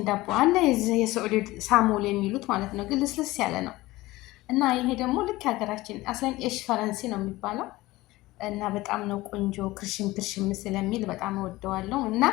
ዳቦ አለ የሰዑዲ ሳሞል የሚሉት ማለት ነው፣ ግን ልስልስ ያለ ነው እና ይሄ ደግሞ ልክ የሀገራችን አስለን ኤሽ ፈረንሲ ነው የሚባለው እና በጣም ነው ቆንጆ። ክርሽም ክርሽም ስለሚል በጣም ወደዋለሁ እና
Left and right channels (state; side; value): quieter; right; 18.8 dB